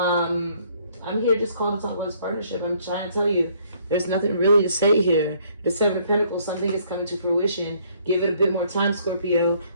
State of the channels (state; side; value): inverted; both; correlation -0.64